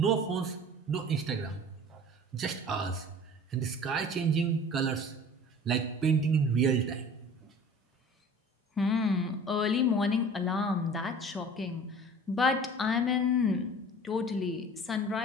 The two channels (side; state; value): both; normal; correlation 0.43